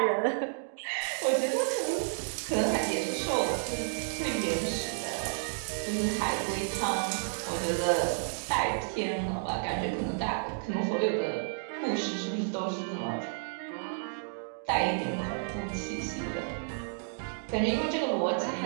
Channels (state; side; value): silent; left; digital silence